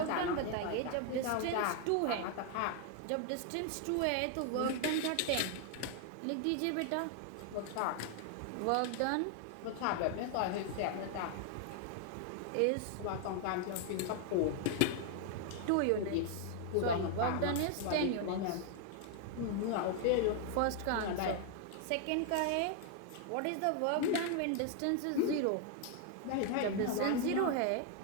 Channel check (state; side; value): different; both; correlation 0.00